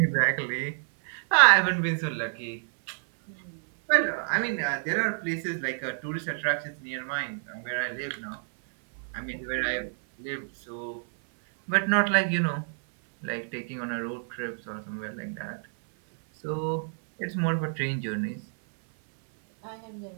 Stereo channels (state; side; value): silent; left; 58 dB below the other